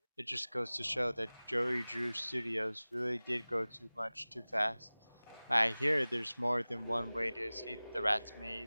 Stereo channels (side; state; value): both; inverted; correlation -0.99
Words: It just goes to show that Joey Drew Studios really did go too much too fast. I hear there's more than one way to escape the rat's